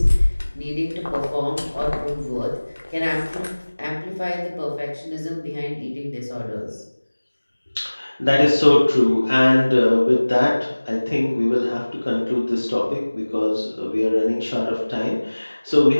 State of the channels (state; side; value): inverted; both; correlation -1.00